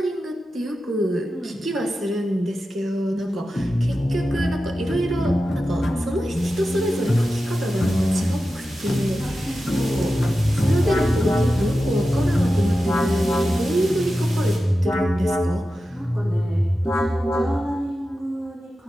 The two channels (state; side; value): normal; both; correlation 0.92